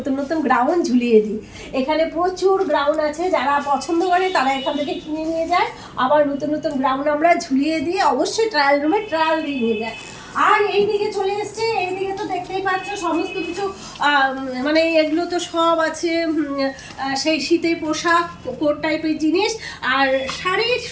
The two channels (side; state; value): both; identical; correlation 1.00